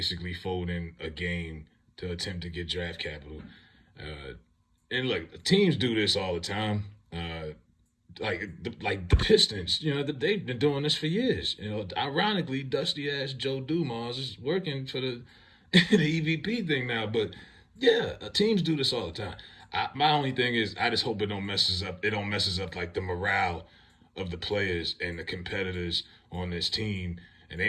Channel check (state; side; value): identical; both; correlation 1.00